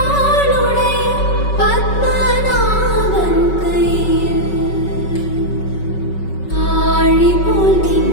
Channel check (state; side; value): late; right; 5.3 ms